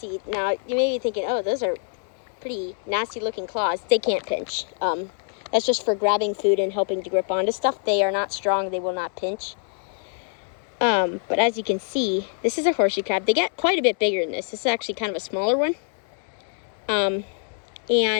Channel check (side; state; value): right; silent; 57 dB below the other